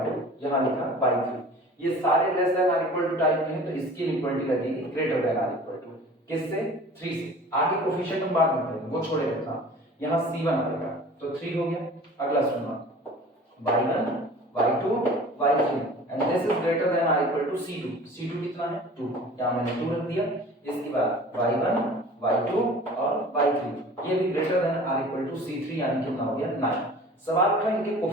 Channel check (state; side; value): normal; both; correlation 0.43